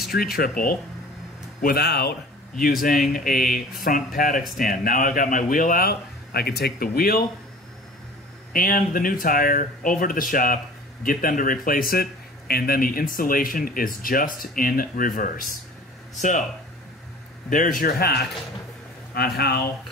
triple without using a front paddock stand. Now I've got my wheel out, I can take the wheel and the new tire over to the shop, get them to replace it, and then the installation is just in reverse. So there's your hack on how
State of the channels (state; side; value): normal; both; correlation 0.43